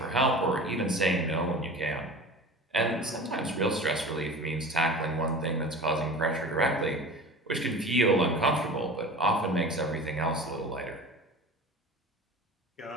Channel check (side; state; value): both; normal; correlation 0.36